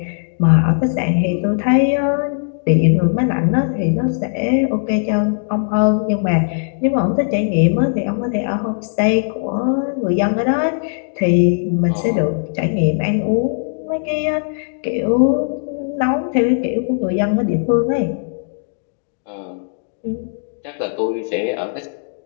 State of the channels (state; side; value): silent; right; digital silence